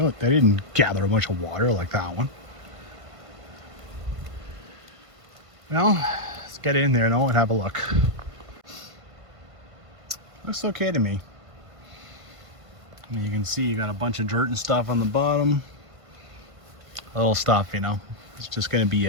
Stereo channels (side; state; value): left; late; 1.5 ms